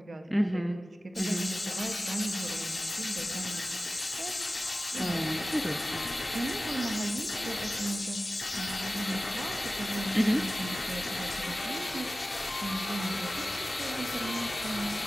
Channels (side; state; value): both; normal; correlation 0.96